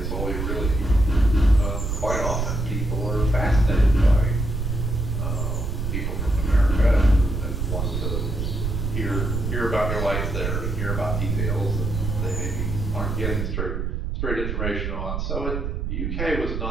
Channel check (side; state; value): right; noise; rumble, 2 dB below the sound